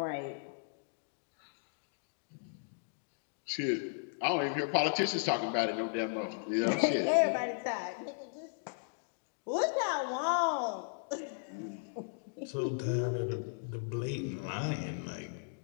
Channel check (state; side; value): silent; right; digital silence